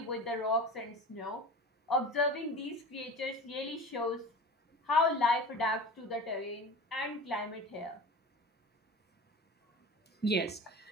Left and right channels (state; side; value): normal; both; correlation 0.34